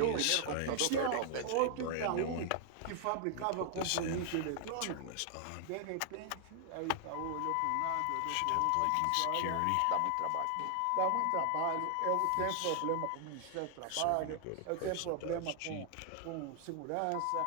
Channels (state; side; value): different; both; correlation 0.00